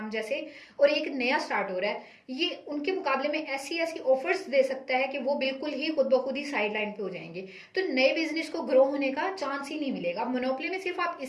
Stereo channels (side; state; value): both; identical; correlation 1.00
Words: जैसे, और एक नया स्टार्ट हो रहा है, ये उनके मुकाबले में ऐसी ऐसी ऑफर्स दे सकता है कि वो बिल्कुल ही खुद ब खुद ही साइड लाइन पे हो जाएंगे। तो नए बिजनेस को ग्रो होने का चांस ही नहीं मिलेगा। मोनोपोली में सिर्फ आप